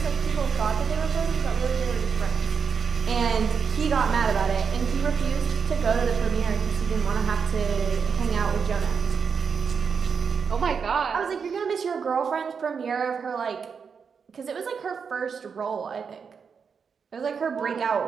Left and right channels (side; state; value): left; quieter; 6.1 dB